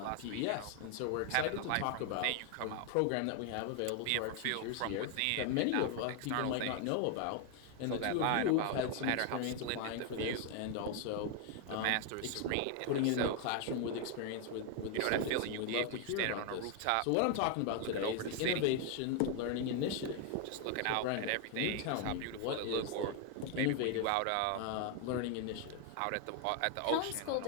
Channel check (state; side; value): different; both; correlation 0.01